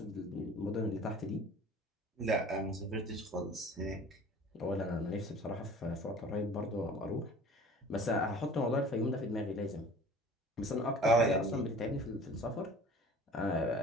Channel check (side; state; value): both; normal; correlation 0.45